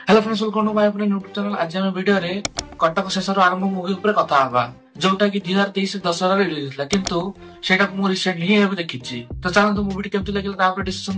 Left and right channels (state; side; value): identical; both; correlation 1.00